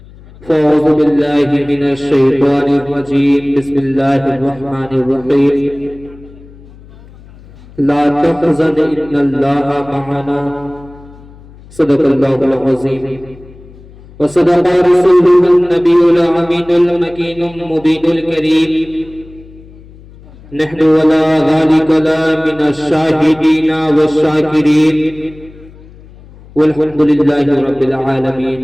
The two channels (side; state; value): left; noise; hum, 22 dB below the sound